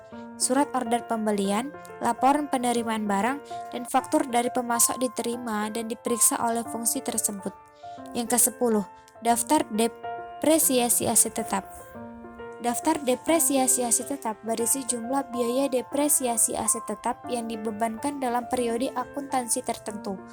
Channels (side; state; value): both; identical; correlation 1.00